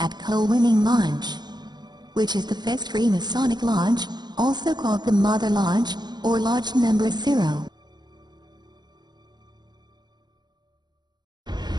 Colwynning Lodge, which is the first Freemasonic lodge, also called the Mother Lodge, or Lodge Number 0.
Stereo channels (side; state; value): left; late; 0.21 ms